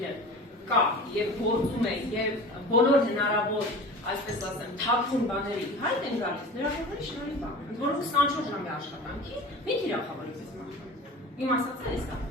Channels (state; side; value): normal; both; correlation 0.37